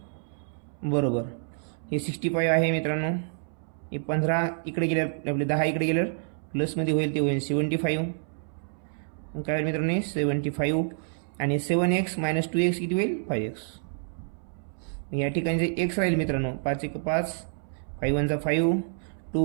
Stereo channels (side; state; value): left; silent; 59 dB below the other